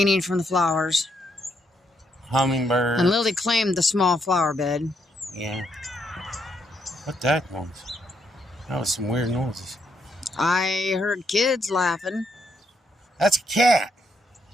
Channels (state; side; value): normal; both; correlation 0.75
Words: need from the flowers. Hummingbird. And Lily claimed the small flower bed. Yeah. What that was? That was some weird noises. I heard kids laughing. That's a cat.